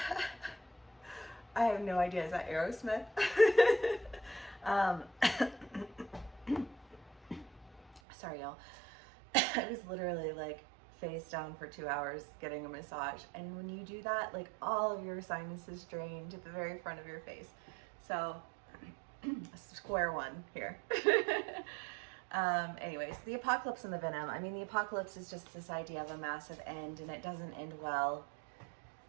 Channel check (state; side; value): drops out; left; at 8.0 s